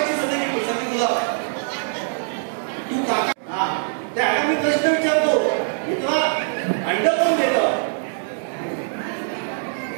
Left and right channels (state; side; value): silent; left; digital silence